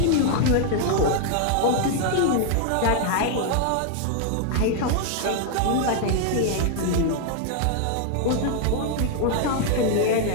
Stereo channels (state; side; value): different; both; correlation 0.00